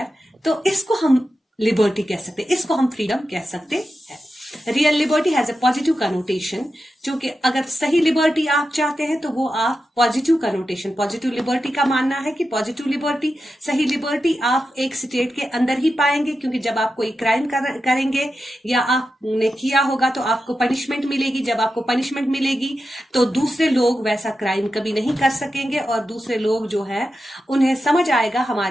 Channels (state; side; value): normal; both; correlation 0.90